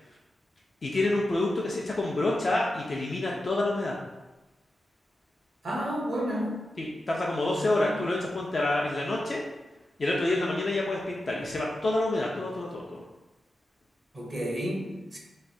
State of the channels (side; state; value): both; normal; correlation 0.90